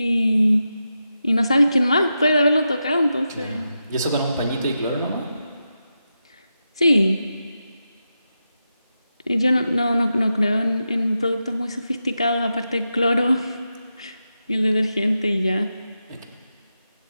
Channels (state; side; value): inverted; both; correlation -0.89